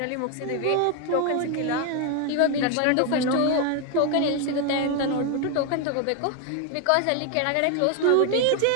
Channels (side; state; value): both; different; correlation 0.01